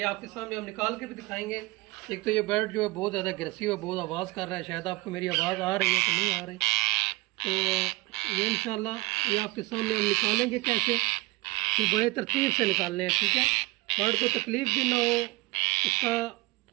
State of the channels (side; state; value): left; quieter; 22.1 dB